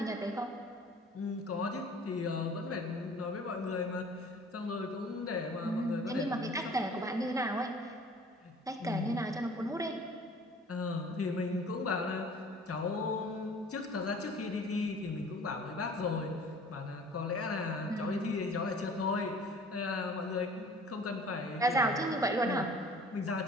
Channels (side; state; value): both; normal; correlation 0.49